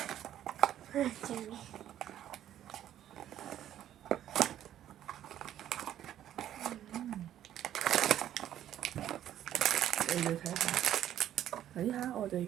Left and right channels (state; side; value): quieter; left; 11.4 dB